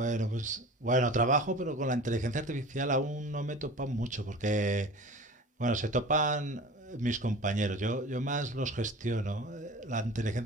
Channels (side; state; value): both; normal; correlation 0.38